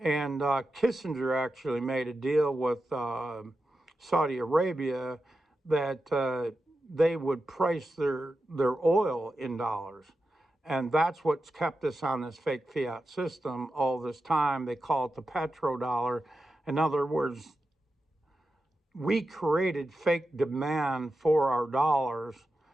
Kissinger actually made a deal with Saudi Arabia that they would price their oil in dollars. And that's what's kept us on this fake fiat system all this time. They call it the petrodollar. In other words, we created fake demand for our dollars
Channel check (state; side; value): normal; both; correlation 0.91